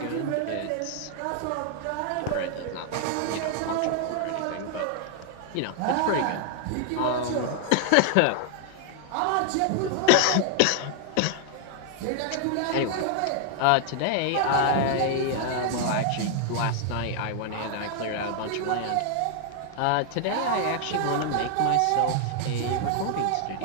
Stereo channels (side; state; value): both; different; correlation 0.00